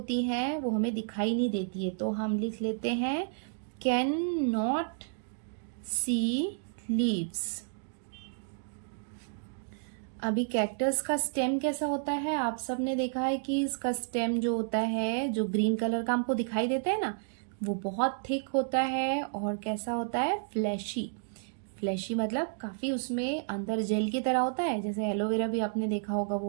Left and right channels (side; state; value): left; silent; digital silence